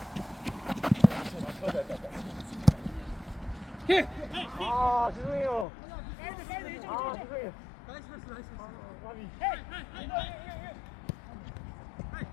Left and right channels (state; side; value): drops out; right; at 5.7 s